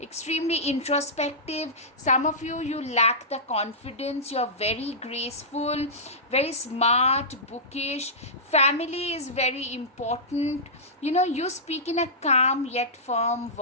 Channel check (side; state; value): both; normal; correlation -0.15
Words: introspective. Some of you lack the confidence. You're very graceful, very smart, bookish. Family is very important. You speak in a calm yet firm